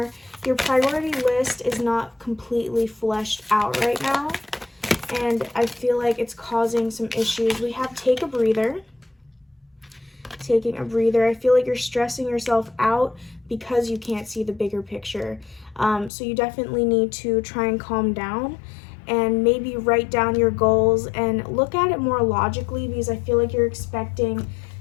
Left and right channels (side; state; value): right; drops out; at 16.1 s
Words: Your priority list is not completely fleshed out right now, and I feel like it's causing some issues. We have take a breather. Taking a breather. I feel like you're stressing yourself out because you can't see the bigger picture. So you definitely need to try and calm down and maybe write down your goals and look at it more logically, because I feel like you're expecting